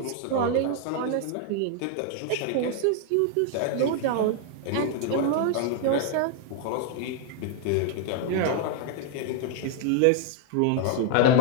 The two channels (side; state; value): both; different; correlation -0.01